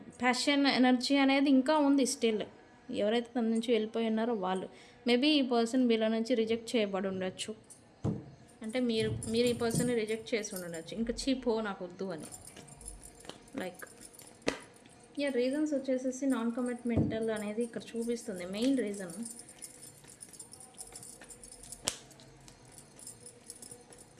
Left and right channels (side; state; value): both; identical; correlation 1.00